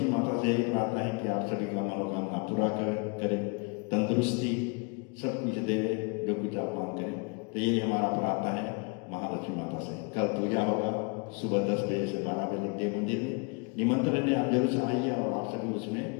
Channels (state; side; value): quieter; right; 33.2 dB